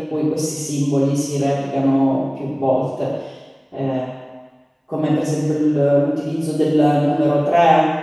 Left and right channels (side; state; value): both; identical; correlation 1.00